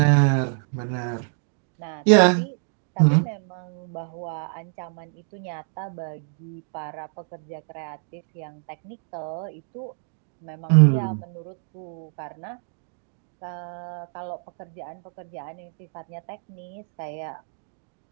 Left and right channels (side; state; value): left; silent; digital silence